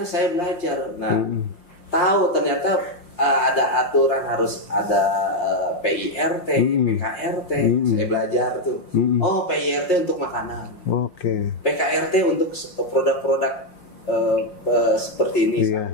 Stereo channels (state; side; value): late; right; 5.6 ms